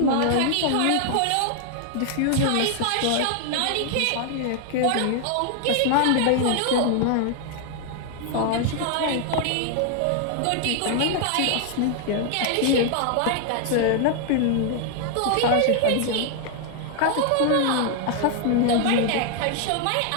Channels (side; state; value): both; different; correlation 0.00